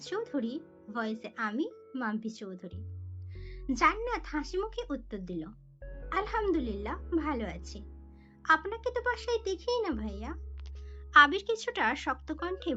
চৌধুরী, ভয়েসে আমি মাম্পি চৌধুরী। জান্নাত হাসি মুখে উত্তর দিল, আলহামদুলিল্লাহ ভালো আছি। আপনাকে তো বাসায় দেখিই না ভাইয়া। আবির কিছুটা শক্ত কণ্ঠে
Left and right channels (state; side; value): identical; both; correlation 1.00